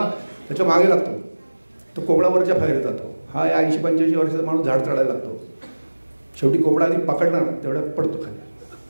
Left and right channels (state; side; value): inverted; both; correlation -1.00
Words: त्याच्या मागे लागतो. तो कोंबडावरच्या फायदे जातो. हा 80-85 वर्षाचा माणूस झाड चढायला लागतो. शेवटी कोंबडा आधी पकडणार तेवढ्यात पडतो